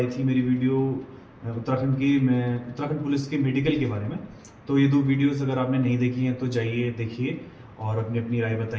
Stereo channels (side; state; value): both; identical; correlation 1.00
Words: थी मेरी वीडियो उत्तराखंड पुलिस के मेडिकल के बारे में। तो ये दो वीडियोस अगर आपने नहीं देखी हैं तो जाइए देखिए और अपनी अपनी राय